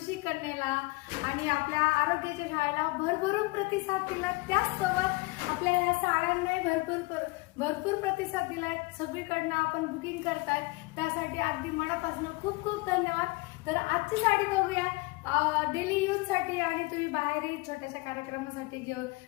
कन्येला आणि आपल्या आरोग्याच्या शाळेला भरभरून प्रतिसाद दिला. त्याचसोबत आपल्या या साड्यांनाही भरपूर प्रतिसाद दिलाय. सगळीकडनं आपण बुकिंग करताय, त्यासाठी अगदी मनापासून खूप खूप धन्यवाद. तर आजची साडी बघूया. डेली यूज साठी आणि तुम्ही बाहेरही छोट्याशा कार्यक्रमासाठी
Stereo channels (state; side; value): quieter; right; 24.1 dB